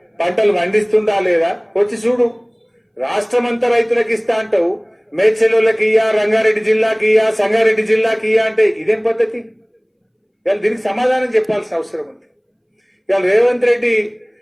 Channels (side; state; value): both; identical; correlation 1.00